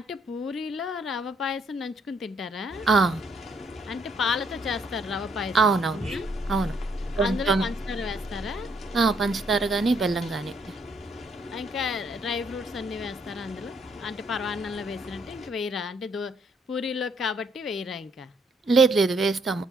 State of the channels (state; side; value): normal; both; correlation 0.70